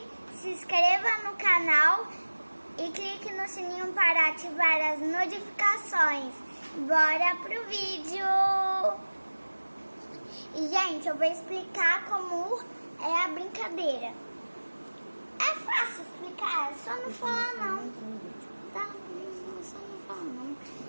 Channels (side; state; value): both; inverted; correlation -1.00